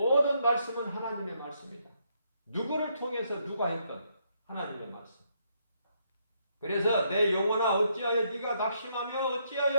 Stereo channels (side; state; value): both; inverted; correlation -0.75